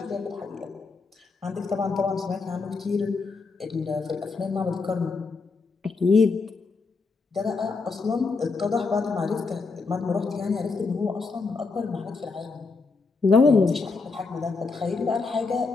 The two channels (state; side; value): quieter; right; 4.3 dB